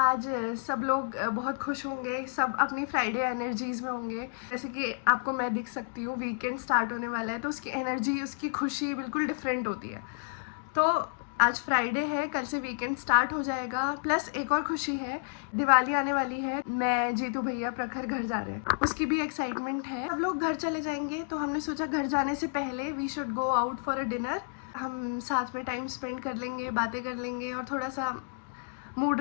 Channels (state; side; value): silent; right; digital silence